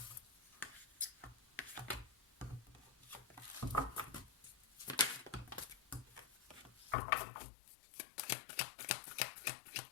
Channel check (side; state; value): right; drops out; at 7.0 s